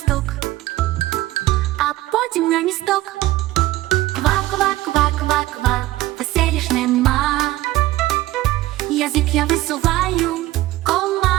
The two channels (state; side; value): quieter; left; 16.8 dB